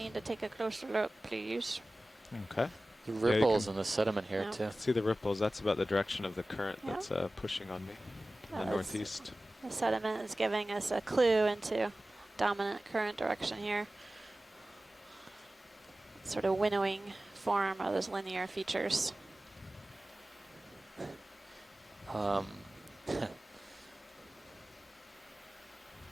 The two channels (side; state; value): both; normal; correlation 0.97